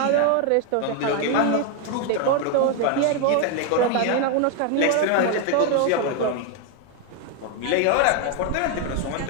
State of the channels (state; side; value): different; both; correlation 0.01